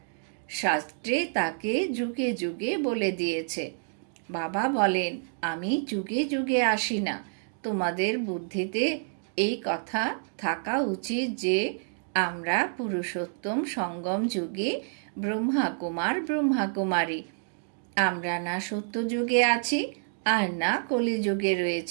শাস্ত্রে তাকে যুগে যুগে বলে দিয়েছে। বাবা বলেন, আমি যুগে যুগে আসি না। তোমাদের বুদ্ধিতে এই কথা থাকা উচিত যে আমরা পুরুষোত্তম সঙ্গম যুগে ব্রহ্মাকুমার ব্রহ্মাকুমারী। আমরা না সত্যযুগে আছি আর না কলিযুগে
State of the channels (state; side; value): silent; left; digital silence